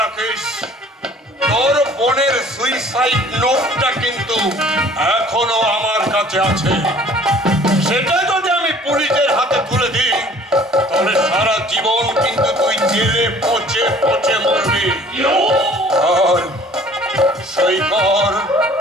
রাখিস, তোর বোনের সুইসাইড নোটটা কিন্তু এখনো আমার কাছে আছে। সেটা যদি আমি পুলিশের হাতে তুলে দিই তাহলে সারা জীবন কিন্তু তুই জেলে পচে পচে মরবি। আর সই কর,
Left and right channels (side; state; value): both; normal; correlation 0.52